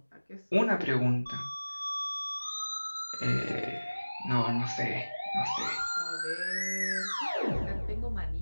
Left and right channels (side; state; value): both; inverted; correlation -1.00